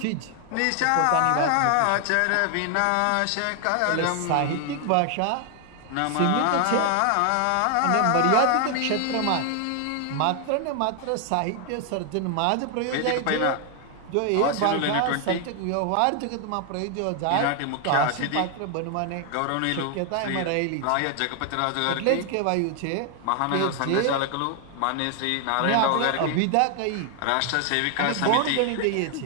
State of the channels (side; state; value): both; different; correlation 0.00